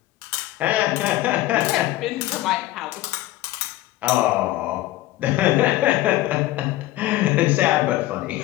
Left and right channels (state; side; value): quieter; right; 16.3 dB